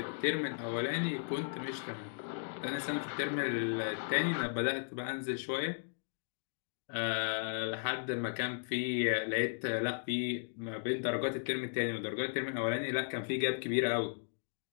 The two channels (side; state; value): right; silent; digital silence